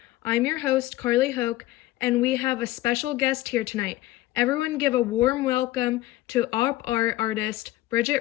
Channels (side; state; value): right; quieter; 16.3 dB